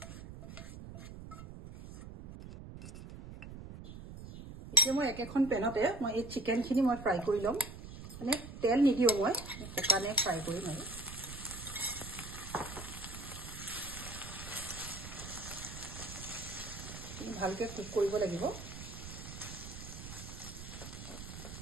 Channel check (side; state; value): right; noise; rumble, 11 dB below the sound